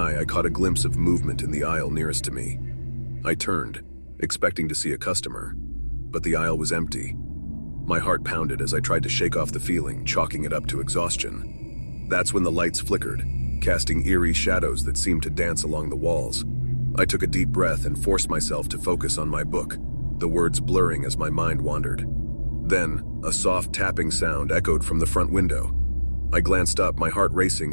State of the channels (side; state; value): both; inverted; correlation -1.00